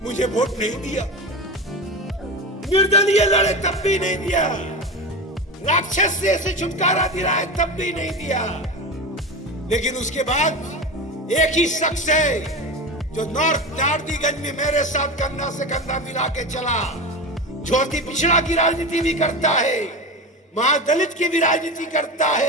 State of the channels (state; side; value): normal; both; correlation 0.24